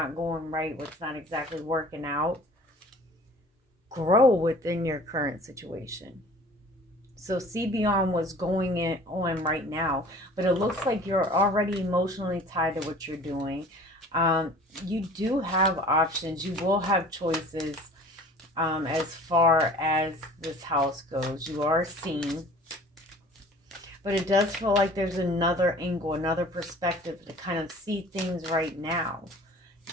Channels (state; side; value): normal; both; correlation 0.46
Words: going right, what's not exactly working out. Grow within your current situation. So see beyond what's going on right now. But it looks like you're already emotionally tied to what you're doing. You do have options. You will have choices as far as this house goes. You are seen. But it does feel like there's another angle, another perspective to kind of see things right now.